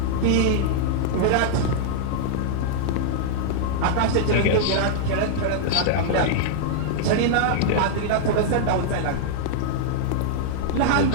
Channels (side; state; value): both; different; correlation -0.01